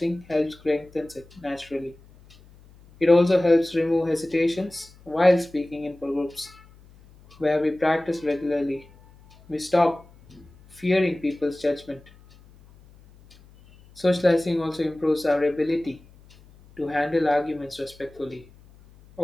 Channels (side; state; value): left; noise; hum, 25 dB below the sound